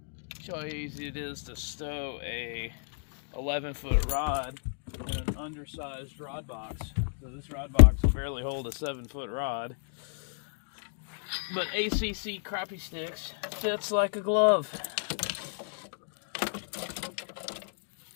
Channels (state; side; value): silent; right; digital silence